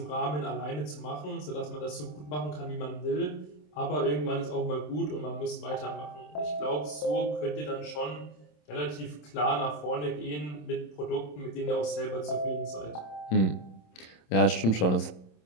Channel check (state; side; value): late; right; 27 ms